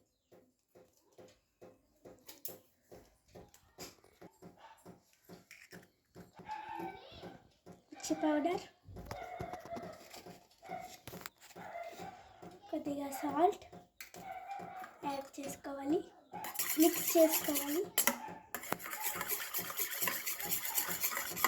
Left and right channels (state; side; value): identical; both; correlation 1.00